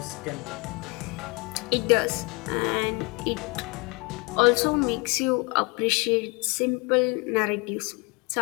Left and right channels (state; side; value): quieter; right; 29.3 dB